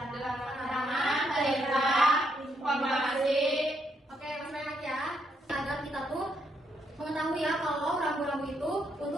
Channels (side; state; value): both; normal; correlation 0.76